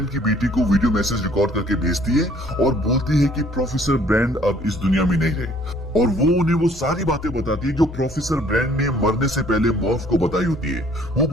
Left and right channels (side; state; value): both; normal; correlation 0.58